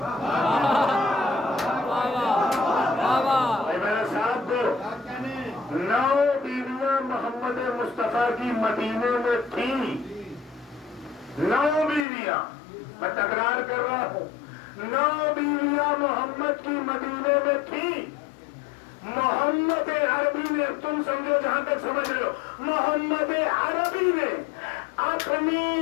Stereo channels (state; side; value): drops out; right; at 12.1 s